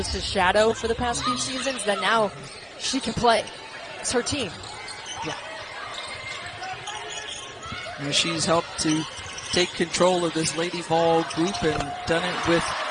shadow for the past few seasons. That now she can play. It's her team. Yeah. And she's helped to take control of this Lady Vol group and done it with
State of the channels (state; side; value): identical; both; correlation 1.00